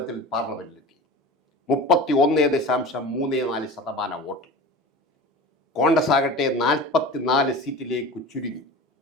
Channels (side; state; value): both; normal; correlation 0.34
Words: പാർലമെന്റിലെത്തി. 31.34% വോട്ട്. കോൺഗ്രസ് ആകട്ടെ 44 സീറ്റിലേക്ക് ചുരുങ്ങി.